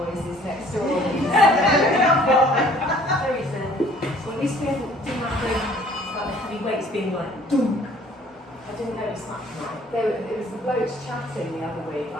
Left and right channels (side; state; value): both; normal; correlation 0.55